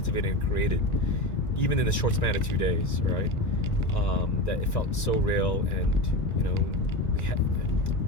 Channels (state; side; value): late; right; 1.9 ms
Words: and created, even in the short span of 2 days, right? That it felt so real, and we had.